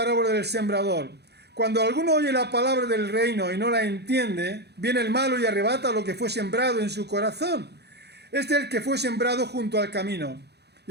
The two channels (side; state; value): left; late; 0.48 ms